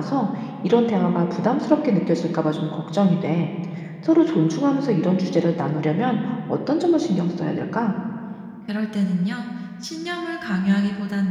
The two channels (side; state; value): both; identical; correlation 1.00